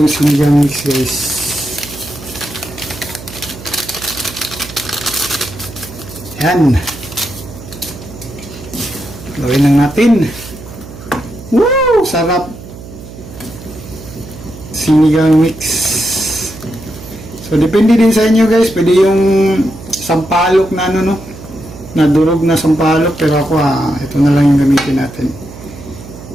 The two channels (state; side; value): noise; right; hum, 15 dB below the sound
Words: sinigang mix, guys. Yan. Gawin lang natin. Woo! Sarap. Sinigang mix. So, depende din sa inyo, guys. Pwede yung sampalok na na durog na sampalok. Pero ako, ito na lang yung gamitin natin.